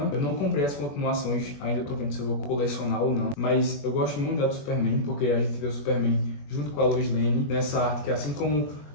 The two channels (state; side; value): late; right; 21 ms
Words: Eu não comprei as continuações, ainda tô vendo se eu vou colecionar ou não. Mas eu gosto muito da do Superman, porque a gente vê o Superman junto com a Lois Lane nessa arte que, assim como